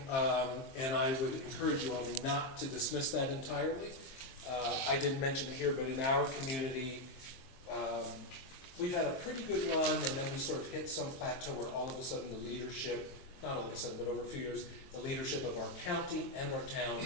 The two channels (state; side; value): late; right; 23 ms